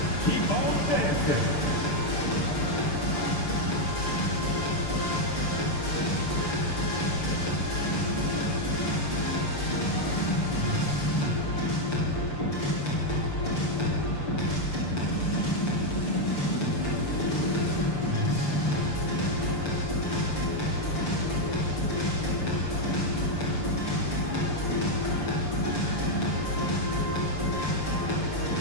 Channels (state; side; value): late; right; 6.8 ms